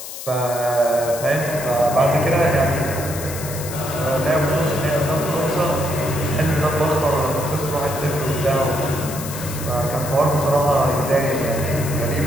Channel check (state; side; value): noise; left; hiss, 10 dB below the sound